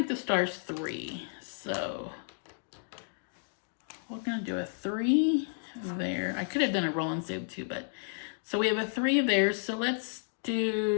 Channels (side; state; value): right; silent; digital silence